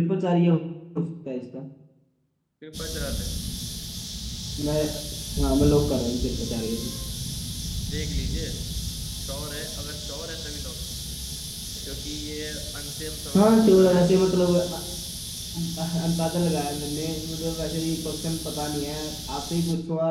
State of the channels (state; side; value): identical; both; correlation 1.00